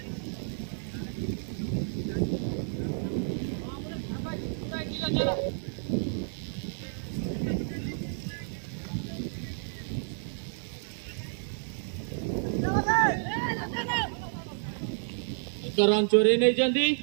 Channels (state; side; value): silent; left; digital silence